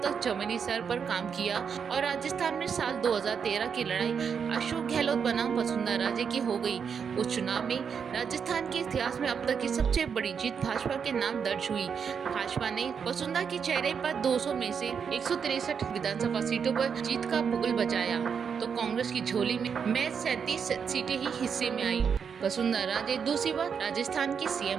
तक जमीनी स्तर पर काम किया और राजस्थान में साल 2013 की लड़ाई अशोक गहलोत बनाम वसुंधरा राजे की हो गई। उस चुनाव में राजस्थान के इतिहास में अब तक की सबसे बड़ी जीत भाजपा के नाम दर्ज हुई। भाजपा ने वसुंधरा के चेहरे पर 200 में से 163 विधानसभा सीटों पर जीत का बुगल बजाया, तो कांग्रेस की झोली में महज 37 सीटें ही हिस्से में आई। वसुंधरा राजे दूसरी बार राजस्थान की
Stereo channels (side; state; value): left; quieter; 6.7 dB